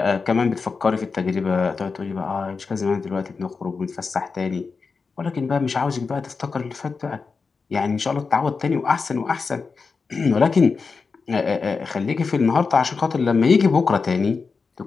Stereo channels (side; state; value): right; quieter; 4.8 dB